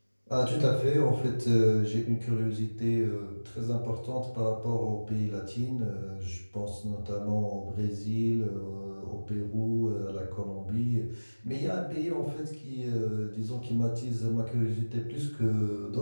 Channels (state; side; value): inverted; both; correlation -1.00